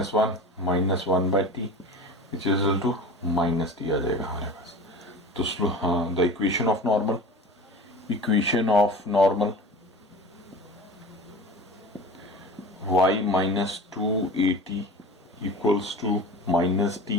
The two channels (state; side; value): normal; both; correlation 0.36